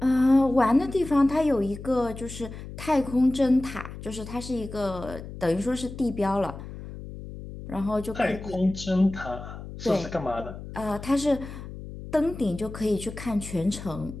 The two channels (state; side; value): noise; left; hum, 12 dB below the sound